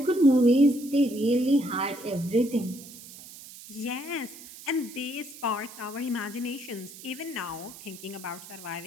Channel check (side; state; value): right; noise; hiss, 16 dB below the sound